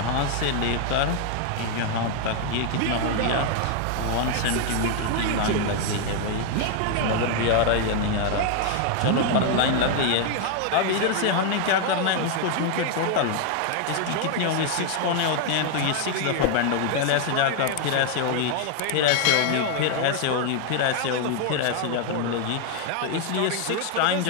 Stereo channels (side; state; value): both; different; correlation 0.00